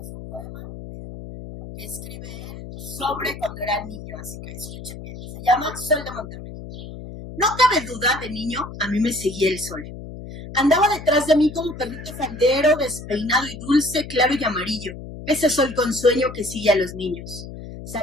un poema que escribe él sobre cuando era niño, así que escuchen bien. Se llama Sol de Monterrey. No cabe duda, de niño a mí me seguía el sol. Andaba detrás de mí como perrito faldero, despeinado y dulce, claro y amarillo. Ese sol con sueño que sigue a los niños.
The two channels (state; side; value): noise; left; hum, 12 dB below the sound